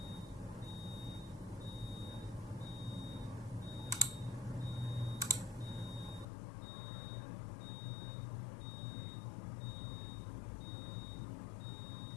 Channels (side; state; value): right; drops out; at 6.2 s